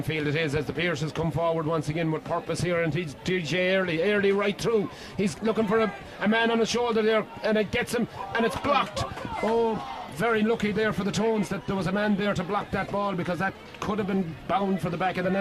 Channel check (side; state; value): both; identical; correlation 1.00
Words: field it is as the Pierces come forward once again with purpose here, and he's DJ early right through. He's looking for a man on his shoulder there, and it gets him, and it's blocked. Oh, very lucky there for the Tones that there was a man there to block that ball, because that could have been bound for the back of the